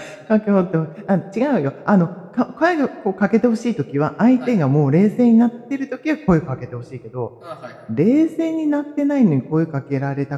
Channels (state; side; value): identical; both; correlation 1.00